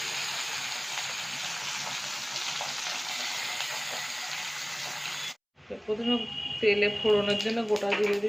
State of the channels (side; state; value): both; identical; correlation 1.00